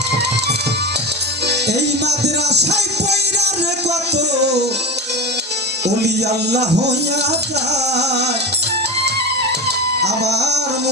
এই মাদ্রাসায় পয়রা রে কত, ওলি আল্লাহ হইয়া যায় আমার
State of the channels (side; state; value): both; normal; correlation 0.24